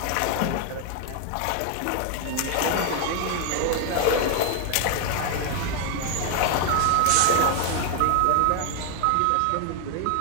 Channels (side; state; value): both; different; correlation 0.00